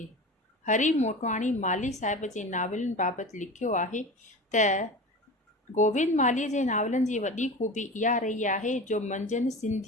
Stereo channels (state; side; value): normal; both; correlation 0.32